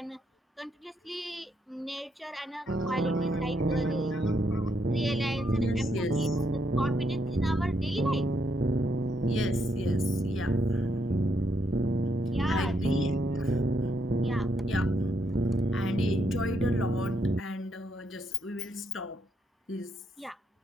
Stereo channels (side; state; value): both; normal; correlation 0.77